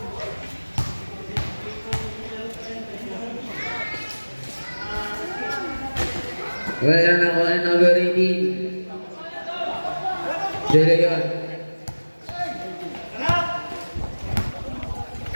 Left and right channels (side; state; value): both; inverted; correlation -1.00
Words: Wala na ko ang number 18. De Leon.